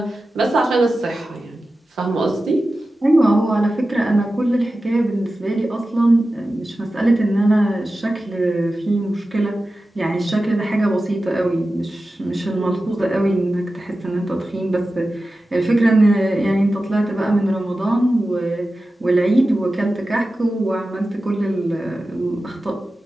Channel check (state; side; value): normal; both; correlation 0.94